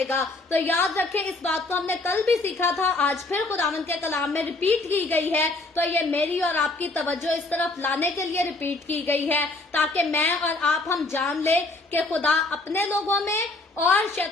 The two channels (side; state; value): right; quieter; 3.1 dB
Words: तो याद रखें, इस बात को हमने कल भी सीखा था, आज फिर खुदावन के कलाम में रिपीट की गई है। तो ये मेरी और आपकी तवज्जो इस तरफ लाने के लिए रिपीट की गई है, ताकि मैं और आप हम जान ले कि खुदा अपने लोगों में और